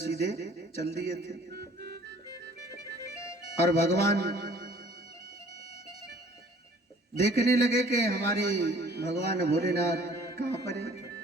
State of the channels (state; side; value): normal; both; correlation 0.54